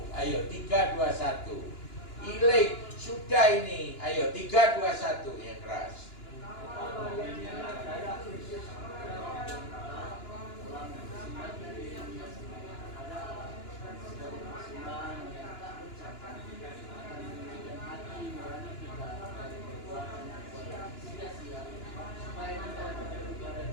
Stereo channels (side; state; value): right; late; 2.9 ms